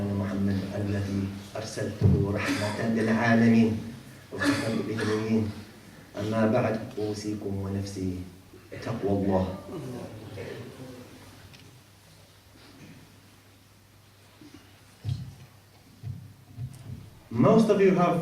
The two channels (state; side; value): identical; both; correlation 1.00